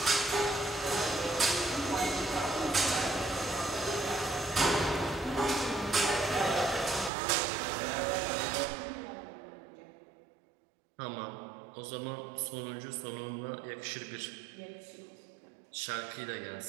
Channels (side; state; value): left; drops out; at 7.1 s